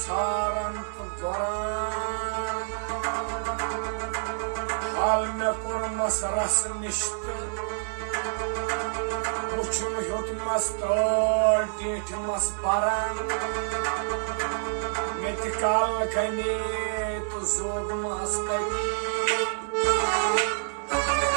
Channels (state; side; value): silent; left; digital silence